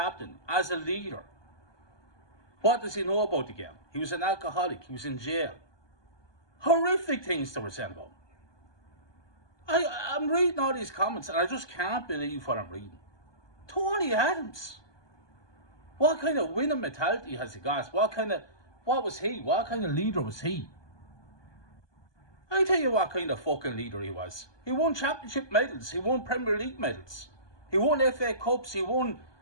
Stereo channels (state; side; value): late; right; 1.2 ms